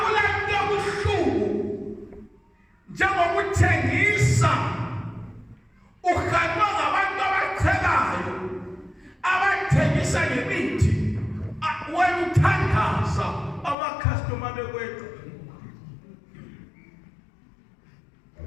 buhlungu njengokuthengisa uhanjwa ngabantu abachelayo abathengisa ngemithi wena uthandaza amakhastoma bekweqa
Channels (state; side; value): drops out; right; at 13.8 s